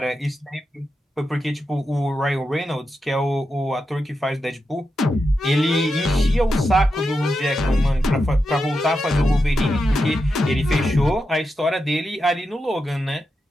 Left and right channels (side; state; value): both; normal; correlation 0.88